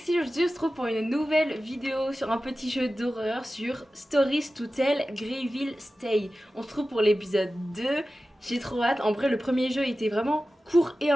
aujourd'hui on se retrouve pour une nouvelle vidéo sur un petit jeu d'horreur sur Stories to Tell Greyville Stay. On se retrouve pour l'épisode 2, j'ai trop hâte. En vrai le premier jeu était vraiment court et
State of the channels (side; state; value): both; normal; correlation 0.95